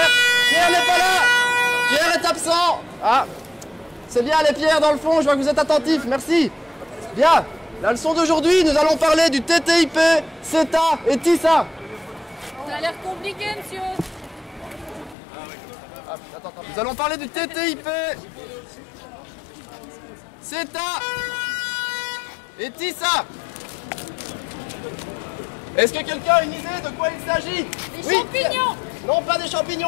Pierre n'est pas là. Pierre est absent. Ah. C'est bien les Pierre dans le fond. Je vois que vous êtes attentifs. Merci. Bien. La leçon d'aujourd'hui, nous allons parler du TTIP, CETA et TISA. Ça a l'air compliqué, monsieur. Attends. Nous allons parler du TTIP, CETA et TISA. Est-ce que quelqu'un a une idée de quoi il s'agit? Des champignons. Non, pas des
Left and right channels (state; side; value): drops out; right; at 15.2 s